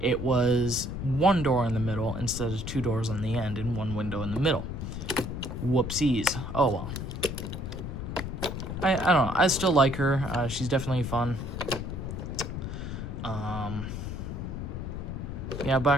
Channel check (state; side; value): noise; left; rumble, 6 dB below the sound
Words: was 1 door in the middle instead of 2 doors on the end and 1 window in the middle. Whoopsies. Oh well. I don't know. I still like her. She's definitely fun. Yeah,